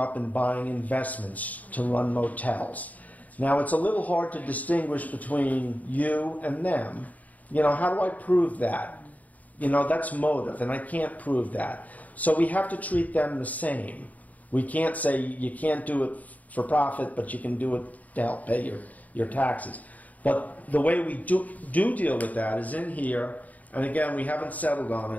and buying investments to run motels. Now, it's a little hard to distinguish between you and them. You know, how do I prove that? You know, that's motive, and I can't prove that. So we have to treat them the same. We can't say you can't do it for profit, but you can do it to help pay your taxes. But the way we do deal with that is in here, and again, we haven't settled on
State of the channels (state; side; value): late; right; 0.074 ms